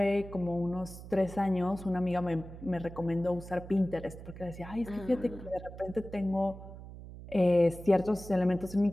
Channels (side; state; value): right; noise; hum, 14 dB below the sound